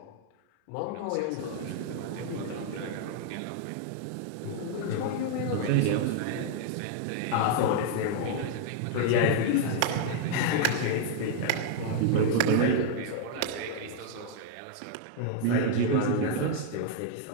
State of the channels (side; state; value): both; different; correlation -0.01